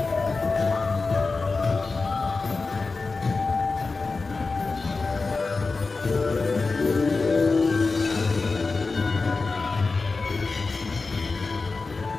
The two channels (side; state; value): right; quieter; 4.0 dB